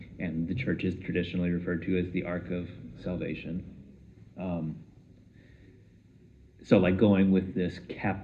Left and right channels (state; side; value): identical; both; correlation 1.00